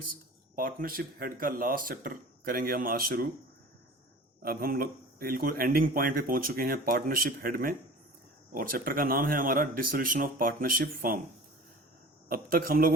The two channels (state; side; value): normal; both; correlation 0.41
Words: partnership head का last chapter करेंगे हम आज शुरू। अब हम लोग बिल्कुल एंडिंग पॉइंट पे पहुंच चुके हैं पार्टनरशिप हेड में, और चैप्टर का नाम है हमारा डिसोल्यूशन ऑफ पार्टनरशिप फर्म। अब तक हम